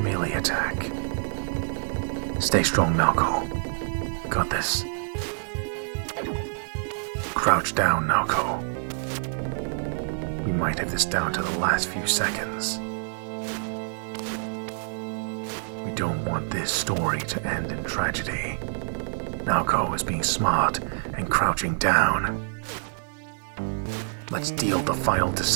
attack. Stay strong, Naoko. We got this. Crouch down, Naoko. We might have this down to the last few seconds. We don't want this story to end in tragedy. Naoko is being smart and crouching down. Let's deal the final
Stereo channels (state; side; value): silent; left; 60 dB below the other